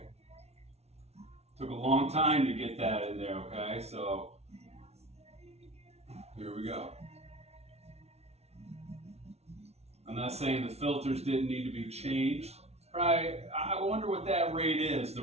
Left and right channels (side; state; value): left; late; 0.31 ms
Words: Took a long time to get that in there, okay? So here we go. I'm not saying the filters didn't need to be changed. Right, I wonder what that rate is,